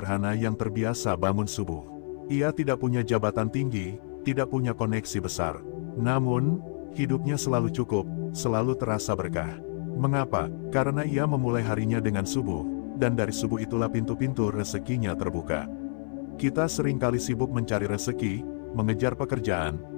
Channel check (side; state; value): right; silent; 59 dB below the other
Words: yang terbiasa bangun subuh. Ia tidak punya jabatan tinggi, tidak punya koneksi besar. Namun, hidupnya selalu cukup, selalu terasa berkah. Mengapa? Karena ia memulai harinya dengan subuh, dan dari subuh itulah pintu-pintu rezekinya terbuka. Kita seringkali sibuk mencari rezeki, mengejar pekerjaan,